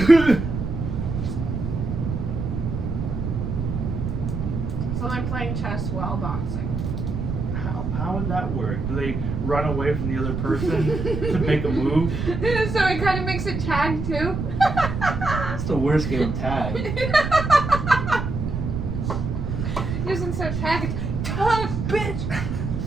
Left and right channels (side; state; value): right; noise; rumble, 3 dB below the sound